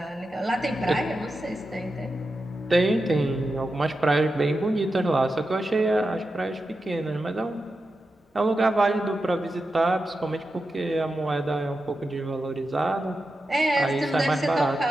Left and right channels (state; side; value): normal; both; correlation 0.90